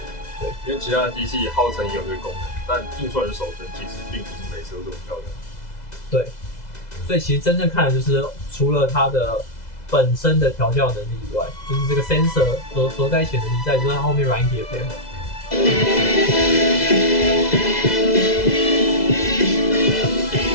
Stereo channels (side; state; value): right; late; 2.0 ms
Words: 对，因为其他的机器号称也有这个功能，但印出来的手层其实并不是每次都这么漂亮。对，所以其实真正看的就是除了它的本身的调教能力以外，就是这个 sensor 所在一起的能力，再就是它后面软体的配合。这